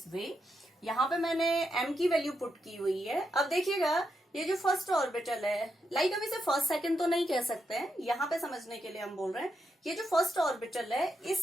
way. यहाँ पे मैंने m की value put की हुई है। अब देखिएगा ये जो फर्स्ट ऑर्बिटल है, लाइक हम इसे फर्स्ट सेकंड तो नहीं कह सकते हैं, यहाँ पे समझने के लिए हम बोल रहे हैं ये जो फर्स्ट ऑर्बिटल है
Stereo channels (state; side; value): normal; both; correlation 0.83